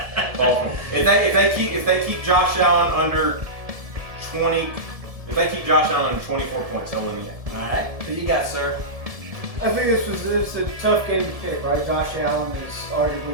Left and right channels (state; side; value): late; left; 1.7 ms